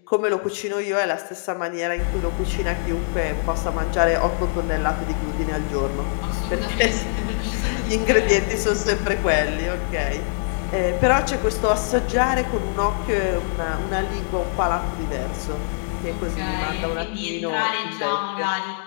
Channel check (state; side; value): silent; right; digital silence